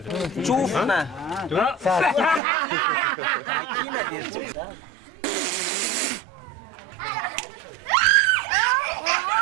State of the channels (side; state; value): left; drops out; at 2.4 s